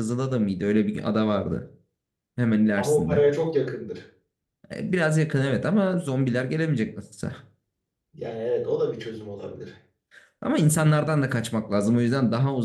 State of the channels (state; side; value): identical; both; correlation 1.00